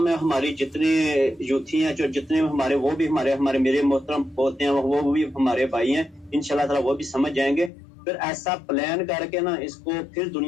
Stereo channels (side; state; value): right; drops out; at 7.7 s